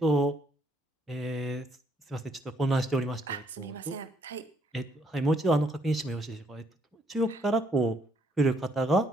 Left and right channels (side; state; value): both; normal; correlation 0.70